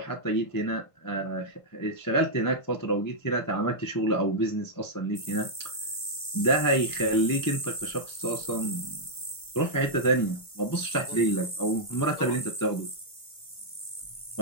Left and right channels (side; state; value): right; late; 1.5 ms